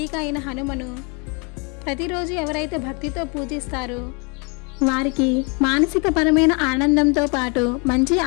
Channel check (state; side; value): quieter; right; 32.8 dB